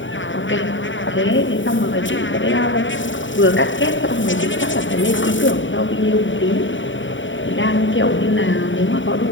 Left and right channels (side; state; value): right; late; 0.55 ms